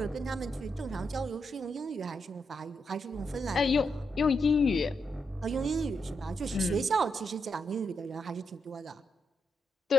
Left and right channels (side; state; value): both; normal; correlation 0.82